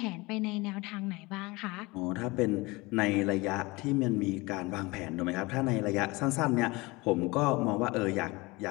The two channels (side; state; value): right; quieter; 23.5 dB